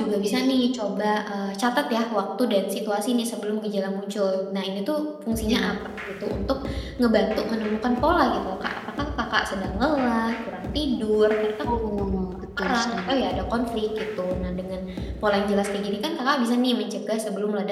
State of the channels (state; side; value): identical; both; correlation 1.00